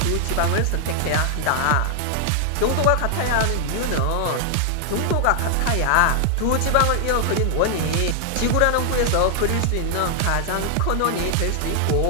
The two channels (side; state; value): both; different; correlation 0.00